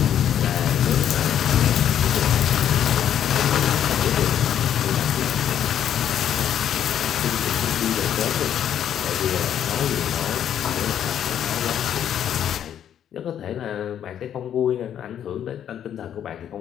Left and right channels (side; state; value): right; quieter; 9.8 dB